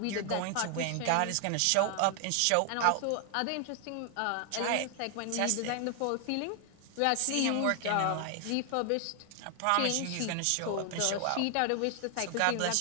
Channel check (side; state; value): both; different; correlation 0.00